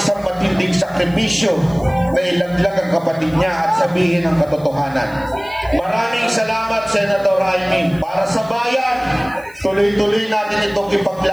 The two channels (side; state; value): left; noise; hiss, 27 dB below the sound